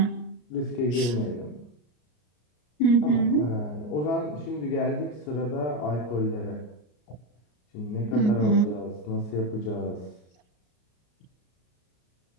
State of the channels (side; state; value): right; late; 33 ms